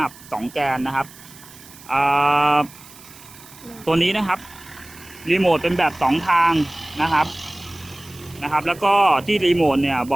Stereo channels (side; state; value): right; noise; hiss, 20 dB below the sound